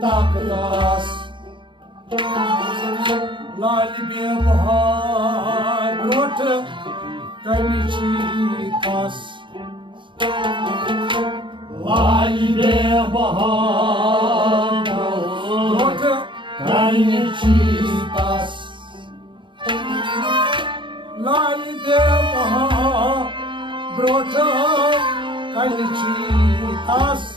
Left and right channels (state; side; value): late; left; 0.24 ms